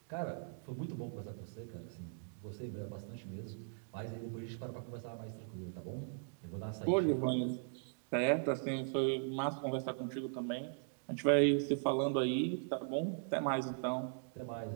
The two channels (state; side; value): silent; left; digital silence